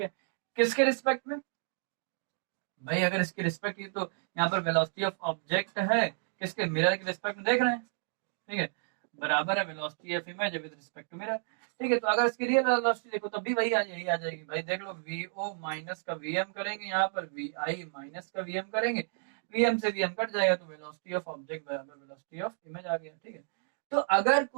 है, किसके रिस्पेक्ट में भाई? अगर इसके रिस्पेक्ट की तो यहाँ पर वेलोसिटी ऑफ ऑब्जेक्ट है किसके, मिरर के रिस्पेक्ट में देख रहे हैं। ठीक है, बराबर है velocity of image with respect to mirror. ठीक है, तो अगर इसकी रियल वेलोसिटी देखो तब भी वही यही आ जाएगी भाई। देख लो, vo माइनस का vm करेंगे, यहाँ पर vi माइनस का vm करेंगे, vm से vm कट जाएगा तो वेलोसिटी ऑफ ऑब्जेक्ट बराबर वेलोसिटी ऑफ इमेज आ गया। ठीक है, तो अगर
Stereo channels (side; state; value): left; silent; digital silence